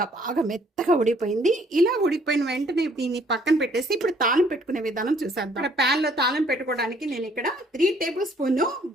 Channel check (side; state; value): both; normal; correlation 0.62